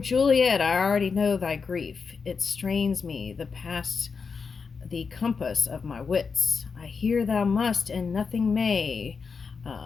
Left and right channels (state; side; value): quieter; right; 5.3 dB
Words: I already know thy grief. It strains me, the compass of my wits. I hear thou must, and nothing may.